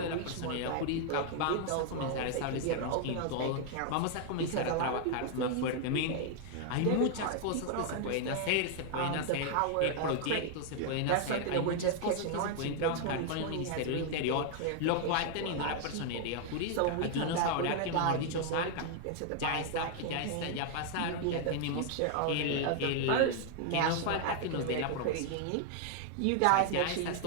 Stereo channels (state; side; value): different; both; correlation 0.00